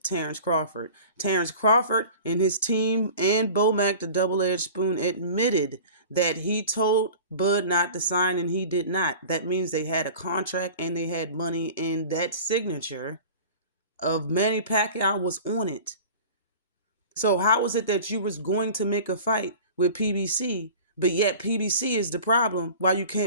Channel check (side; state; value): both; inverted; correlation -0.40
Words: Terence Crawford. Terence Crawford and his team and Bomac, the double-edged spoon, admitted that he told Bud not to sign and he did not. That means they had a contract and they had money, and that signature of Manny Pacquiao was on it. So how is it that you was going to make a fight with PBC, but yet PBC is the problem while you